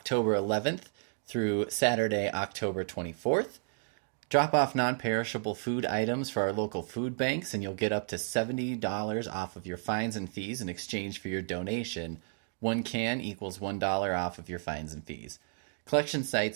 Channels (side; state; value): left; silent; digital silence